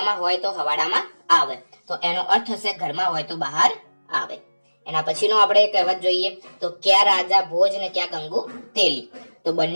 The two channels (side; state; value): both; inverted; correlation -1.00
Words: હોય તો હવાડામાં આવે. તો એનો અર્થ થશે ઘરમાં હોય તો બહાર આવે. એના પછીનો આપણે કહેવત જોઈએ તો ક્યાં રાજા ભોજ ને ક્યાં ગંગુ તેલી. તો